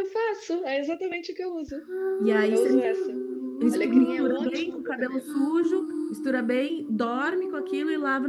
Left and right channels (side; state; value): both; identical; correlation 1.00